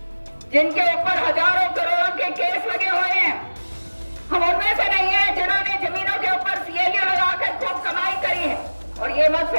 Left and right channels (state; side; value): inverted; both; correlation -1.00